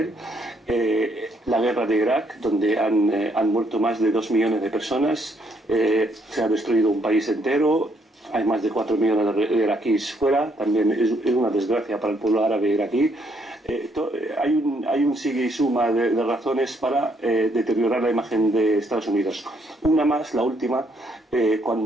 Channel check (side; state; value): both; normal; correlation 0.71